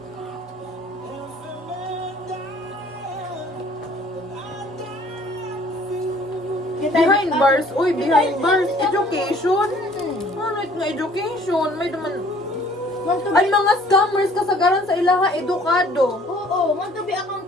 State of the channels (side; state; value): both; normal; correlation 0.55